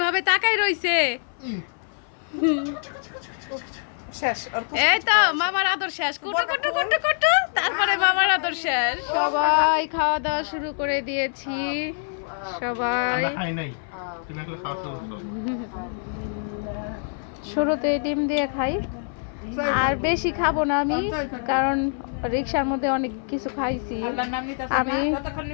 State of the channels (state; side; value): silent; right; 58 dB below the other